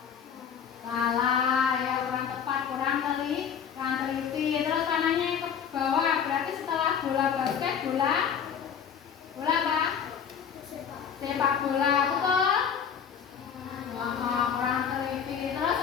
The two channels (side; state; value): right; quieter; 7.6 dB